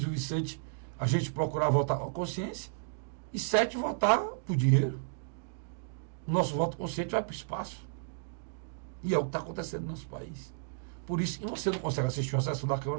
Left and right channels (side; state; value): left; silent; digital silence